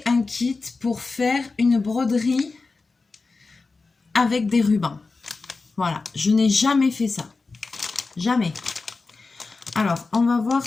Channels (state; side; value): quieter; right; 4.0 dB